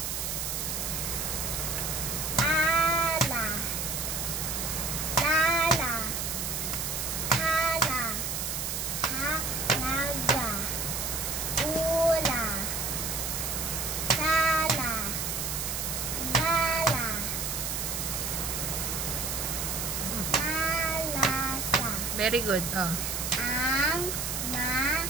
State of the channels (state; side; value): noise; right; hiss, 2 dB below the sound